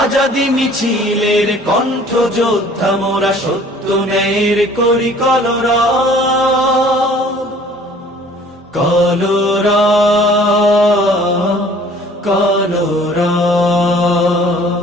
মিছিলের কণ্ঠ যোদ্ধা মোরা, সত্য ন্যায়ের করি কলরব। কলরব কলরব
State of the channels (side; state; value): both; normal; correlation 0.53